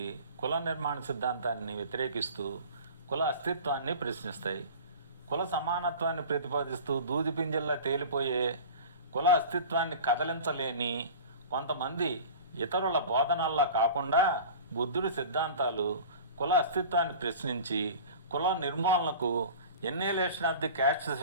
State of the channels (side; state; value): both; inverted; correlation -0.38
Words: కుల నిర్మాణ సిద్ధాంతాన్ని వ్యతిరేకిస్తూ కుల అస్తిత్వాన్ని ప్రశ్నిస్తాయి. కుల సమానత్వాన్ని ప్రతిపాదిస్తూ దూది పింజల్లా తేలిపోయే కుల అస్తిత్వాన్ని కదలించలేని కొంతమంది ఇతరుల బోధనల్లా కాకుండా బుద్ధుడి సిద్ధాంతాలు కుల అస్తిత్వాన్ని ప్రశ్నించి కుల నిర్మూలనకు ఎన్నేలేషన్ ఆఫ్ ది క్యాస్ట్